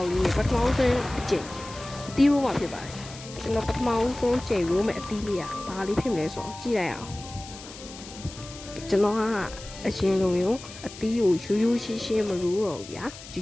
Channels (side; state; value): left; noise; hiss, 15 dB below the sound